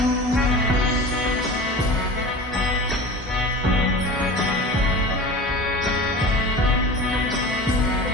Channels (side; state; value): both; normal; correlation 0.35